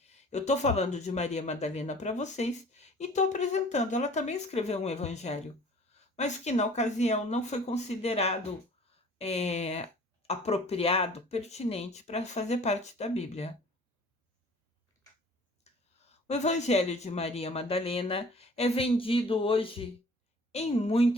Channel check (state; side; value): normal; both; correlation 0.49